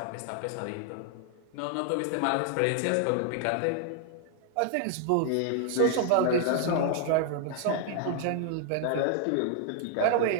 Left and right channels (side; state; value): both; different; correlation 0.00